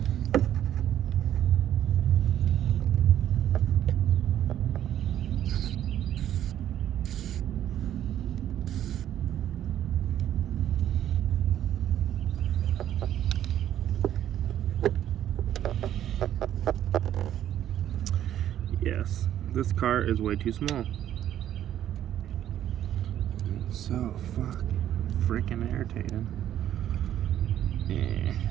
Yes, this car is way too small. It's so freaking irritating.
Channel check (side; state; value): left; quieter; 11.2 dB